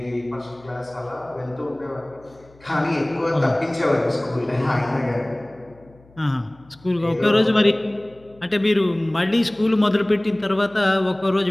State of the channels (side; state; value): left; noise; hum, 27 dB below the sound